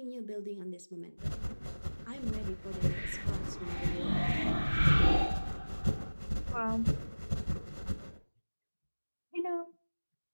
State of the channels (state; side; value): inverted; both; correlation -1.00